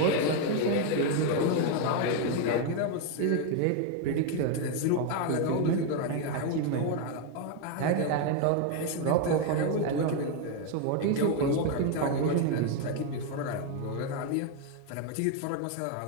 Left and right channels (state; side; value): different; both; correlation 0.01